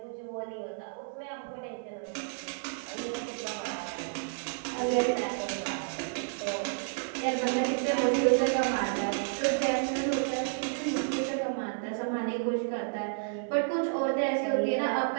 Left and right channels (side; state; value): left; silent; 57 dB below the other